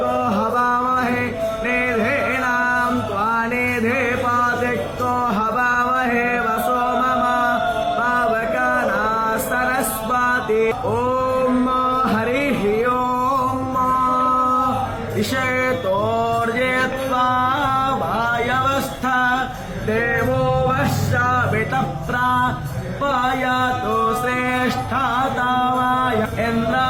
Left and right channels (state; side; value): identical; both; correlation 1.00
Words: ओम हरिः ओम इषेतोर्जेत्वा वायवस्था देवो वश्रावितप्रापायातो श्रेष्ठातावाय